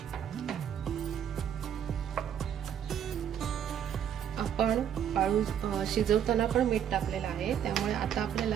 आपण आळू शिजवताना पण मीठ टाकलेलं आहे, त्यामुळे आता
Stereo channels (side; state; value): left; quieter; 9.2 dB